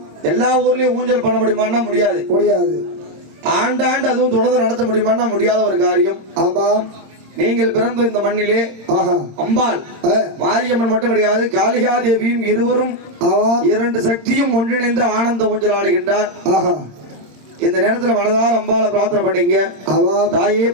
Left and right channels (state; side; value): late; left; 26 ms